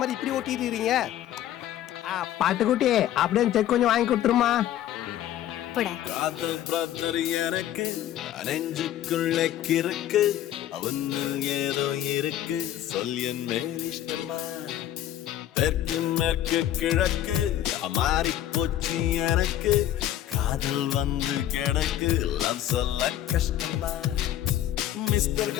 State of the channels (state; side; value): quieter; right; 12.1 dB